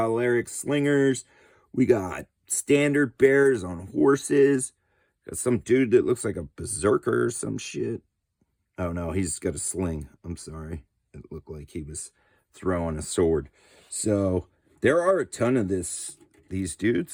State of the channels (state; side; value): identical; both; correlation 1.00